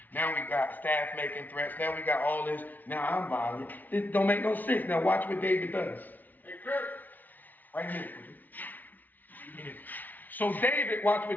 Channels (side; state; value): right; late; 0.082 ms